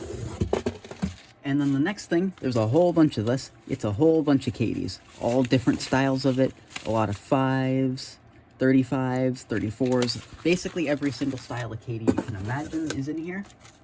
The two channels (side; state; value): both; identical; correlation 1.00